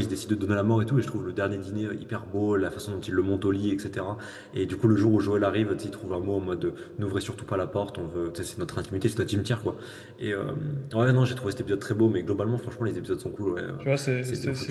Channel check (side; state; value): both; identical; correlation 1.00